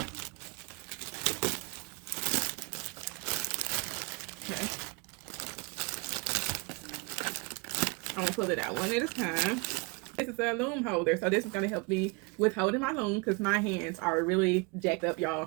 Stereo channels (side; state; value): left; quieter; 29.2 dB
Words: Okay. I'm gonna pull it out one at a time. This is a loom holder, so this is gonna help me with holding my loom because my hands are really jacked up,